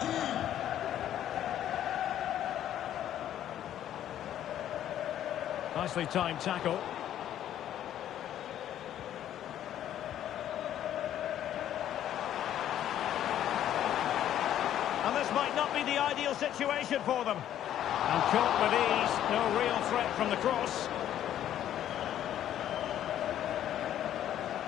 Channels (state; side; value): quieter; right; 11.3 dB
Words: Nicely timed tackle. And this might not be the ideal situation for them. And caught with ease, no real threat from the cross.